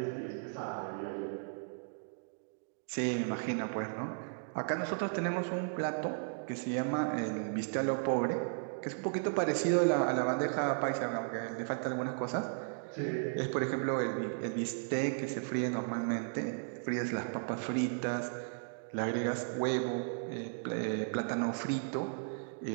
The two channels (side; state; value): left; silent; digital silence